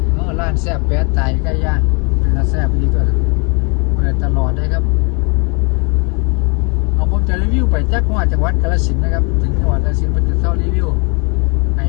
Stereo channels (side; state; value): right; quieter; 33.0 dB